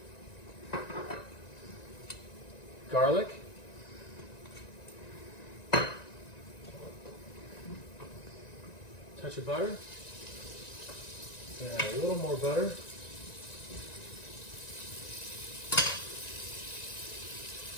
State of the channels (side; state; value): right; late; 1.9 ms